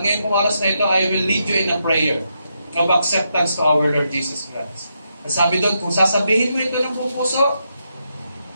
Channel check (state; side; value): inverted; both; correlation -0.82